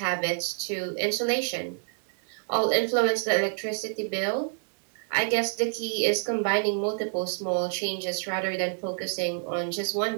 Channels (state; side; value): silent; left; digital silence